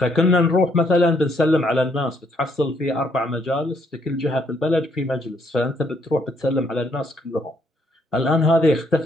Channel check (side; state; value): both; normal; correlation 0.70